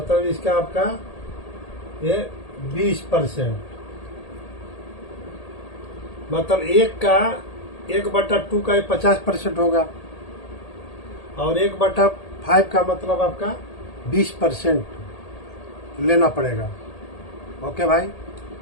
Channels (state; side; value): late; right; 1.8 ms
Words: इसका आपका ये 20%, मतलब 1/2 का 50% होगा, और 1/5 का मतलब आपका 20% लेना पड़ेगा। ओके भाई,